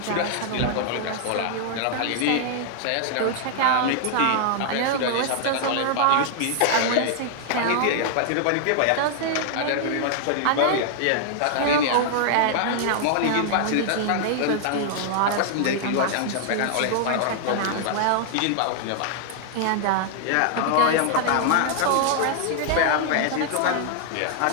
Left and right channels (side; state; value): both; different; correlation -0.01